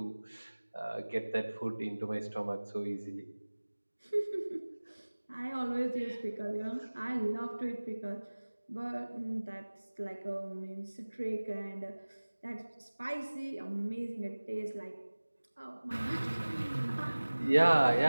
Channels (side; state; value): both; inverted; correlation -1.00